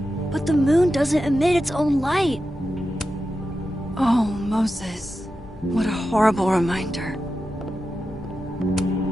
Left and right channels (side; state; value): both; normal; correlation 0.91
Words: but the moon doesn't emit its own light. Oh, Moses. What a horrible reminder.